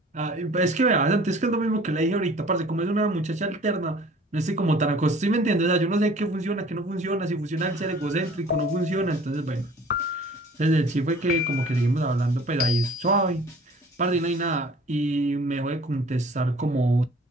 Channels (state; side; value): normal; both; correlation 0.50